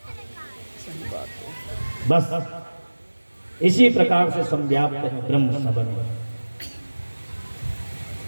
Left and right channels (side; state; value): both; inverted; correlation -1.00